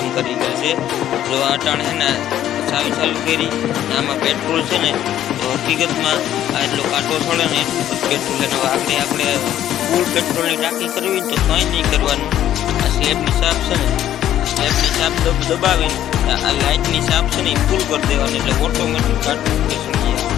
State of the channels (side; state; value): right; quieter; 11.8 dB